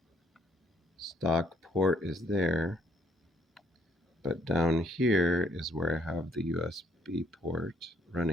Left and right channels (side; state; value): both; normal; correlation 0.66